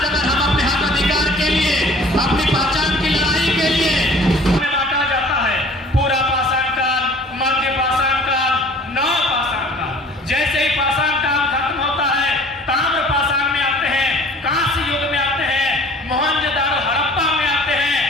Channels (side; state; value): both; normal; correlation 0.49